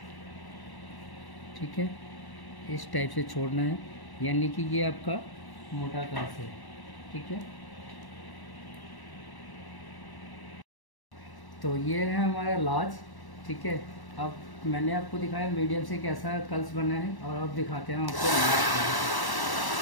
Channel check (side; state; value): right; late; 1.1 ms